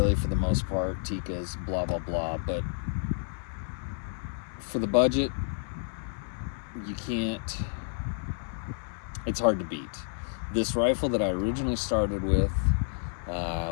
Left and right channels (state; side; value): silent; right; 56 dB below the other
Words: for the most part, Tikkas, blah blah blah, but for the budget, you can't, it's hard to beat. This rifle that I originally started with, I